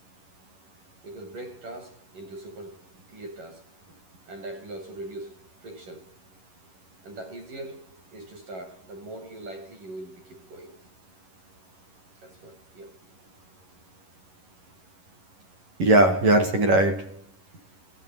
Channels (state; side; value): late; left; 11 ms